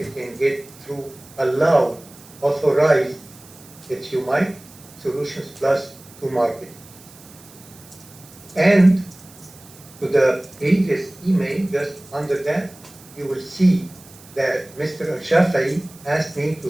it through allowed, authorized, if you might, Solutions Plus to market. And to the previous email, just under that, you will see that Mr. Al-Shafai asked me to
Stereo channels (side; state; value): right; noise; hiss, 22 dB below the sound